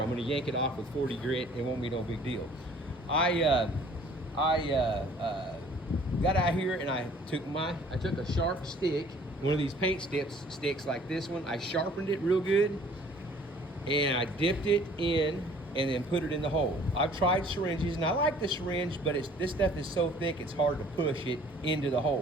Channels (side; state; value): both; normal; correlation 0.54